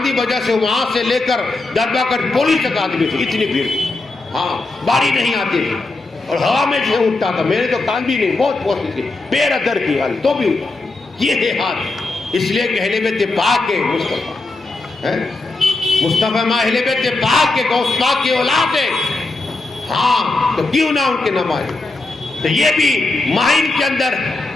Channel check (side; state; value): right; quieter; 3.2 dB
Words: وجہ سے، وہاں سے لے کر درگاہ کر پولیس تک آدمی تھی، اتنی بھیڑ، ہاں باری نہیں آتی تھی اور ہوا میں سے اٹھتا تھا، میرے تو کان بھی نہیں، بہت پوچھتی تھی، بے ادر کی حال تو بھی اٹھا، یہ ہے ہاتھ، اس لیے کہ اہل بیت پاک کے مصطفیٰ مصطفیٰ ماں اہل بیت پاک کے غوث پاک کی اولاد ہے، ہاں تو کیوں نہ ان کے نماز۔ تو یہ بھی ماہین کے اندر